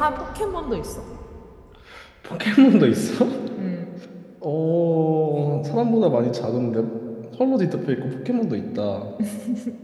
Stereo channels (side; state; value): both; identical; correlation 1.00